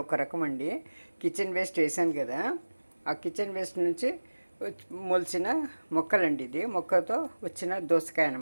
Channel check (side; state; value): both; inverted; correlation -1.00